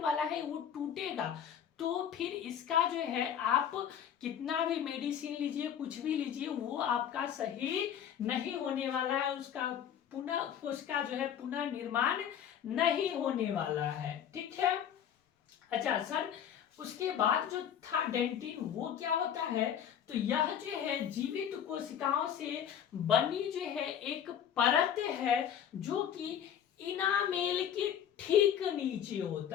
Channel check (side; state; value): right; quieter; 9.1 dB